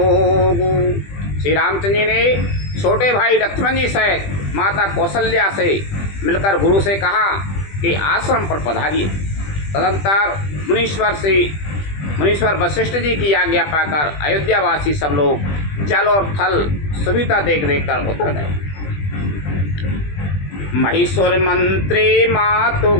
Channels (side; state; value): right; late; 20 ms